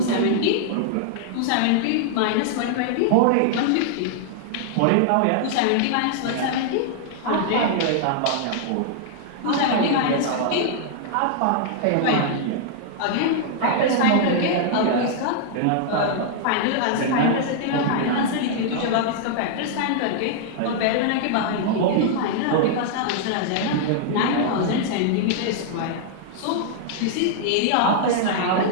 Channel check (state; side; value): different; both; correlation -0.01